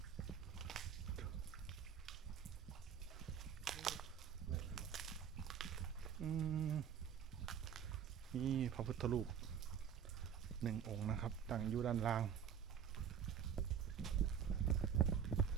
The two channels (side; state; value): left; quieter; 8.1 dB